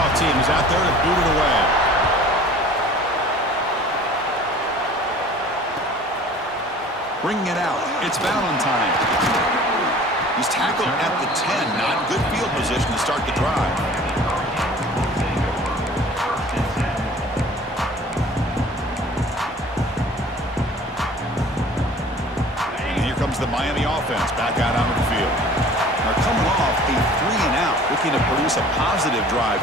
team is out there to boot it away. Bringing it out. It's Valentine. He's tackled at the 10. Not good field position to start the drive. And here comes the Miami offense back out onto the field. They're coming off a 3-and-out, looking to produce a positive drive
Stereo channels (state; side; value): normal; both; correlation 0.47